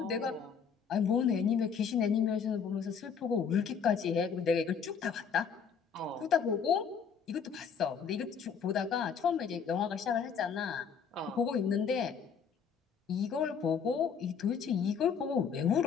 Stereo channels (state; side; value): quieter; right; 6.6 dB